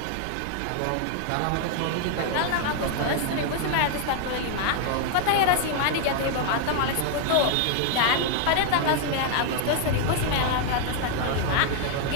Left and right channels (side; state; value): both; different; correlation 0.00